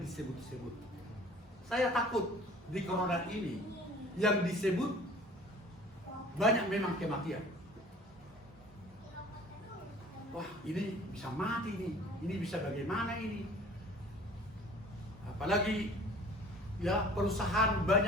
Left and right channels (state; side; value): normal; both; correlation 0.48